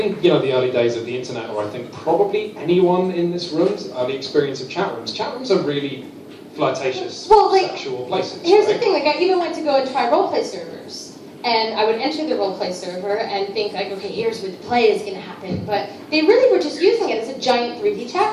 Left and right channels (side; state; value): both; identical; correlation 1.00